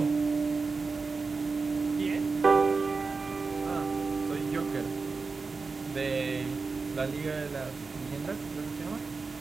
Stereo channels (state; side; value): quieter; left; 4.3 dB